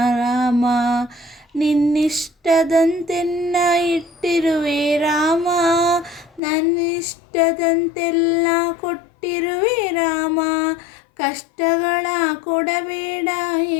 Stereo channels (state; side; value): drops out; right; at 6.4 s